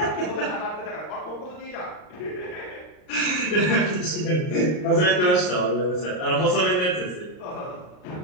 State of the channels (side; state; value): right; late; 39 ms